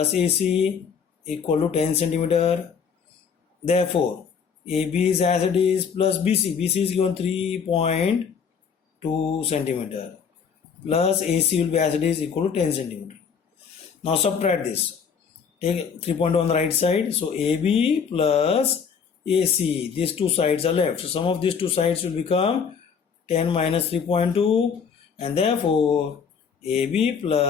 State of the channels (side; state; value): right; quieter; 6.5 dB